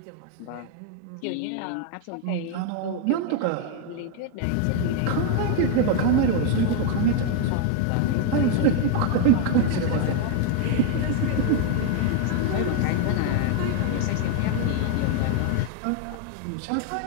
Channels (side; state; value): both; different; correlation 0.01